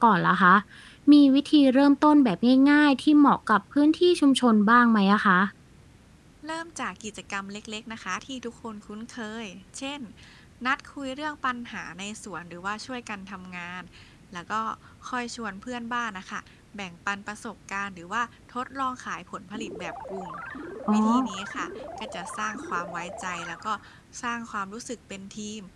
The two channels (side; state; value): both; identical; correlation 1.00